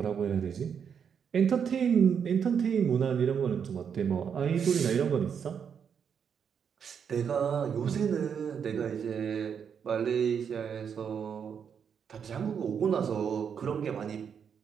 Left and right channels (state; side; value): quieter; left; 7.3 dB